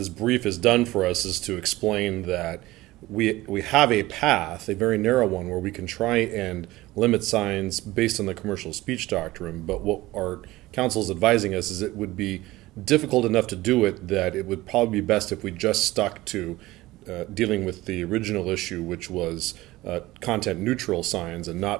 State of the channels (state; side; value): quieter; left; 18.2 dB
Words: brief has done for us is to explain that we have a path, a very narrow one, where we can try and limit signs based on the commercial speech doctrine. But what our counsel is advising us is it would be difficult enough to do it that it would probably be best if we just stuck to dealing with the original issue, which was content neutral signs, and not